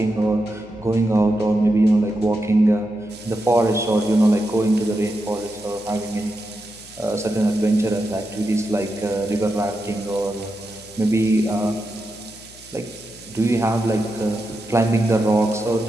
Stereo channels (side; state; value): left; noise; hum, 23 dB below the sound